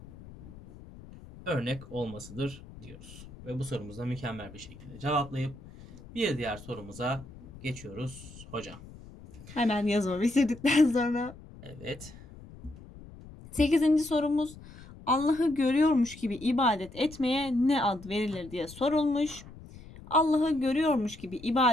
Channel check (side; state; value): left; noise; rumble, 18 dB below the sound